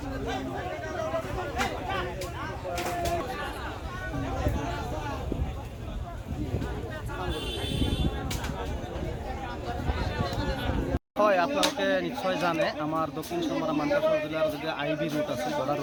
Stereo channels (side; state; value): both; identical; correlation 1.00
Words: হয় আপোনালোকে নিশ্চয় জানে আমাৰ দক্ষিণ চমৰা মানকাছৰ জিলাৰ যদি আইবি ৰুট আছে বৰ্ডাৰ